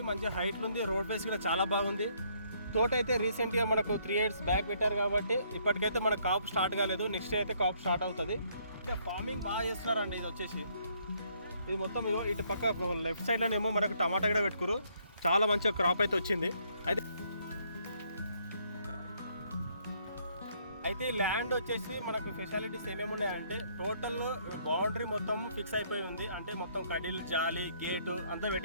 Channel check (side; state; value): both; inverted; correlation -0.68